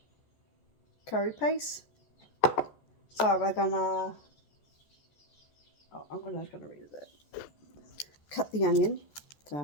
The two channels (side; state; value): right; late; 14 ms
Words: curry paste. So we're gonna. Oh, I'm just gonna read it. Cut the onion.